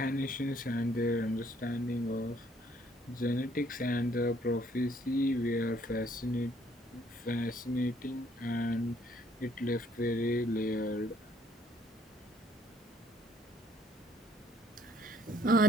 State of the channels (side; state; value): both; normal; correlation 0.65